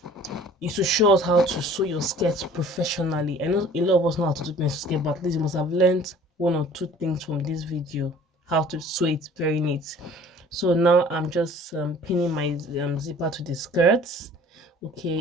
to show us how to sew your skirts professionally. I know a lot of us know how to do pencil skirt, but at least you must have learned 1 or 2 things from this video, how to sew it very neat. So now I'm just pinning my zipper to the skirts.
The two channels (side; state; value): both; normal; correlation 0.49